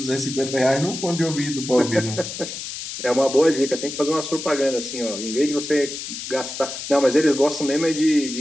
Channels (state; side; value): noise; left; hiss, 8 dB below the sound